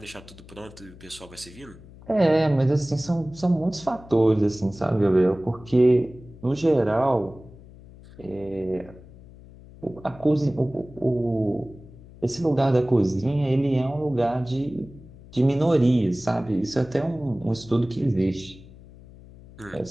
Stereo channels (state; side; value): noise; left; hum, 20 dB below the sound